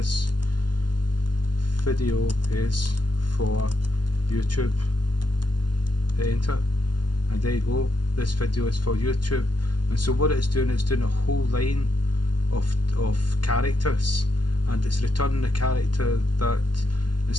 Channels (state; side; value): late; right; 0.71 ms